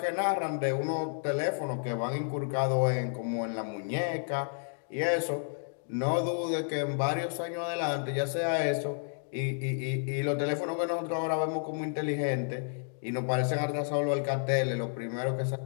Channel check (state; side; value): silent; right; digital silence